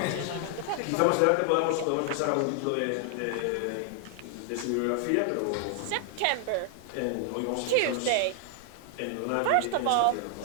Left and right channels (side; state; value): both; different; correlation 0.00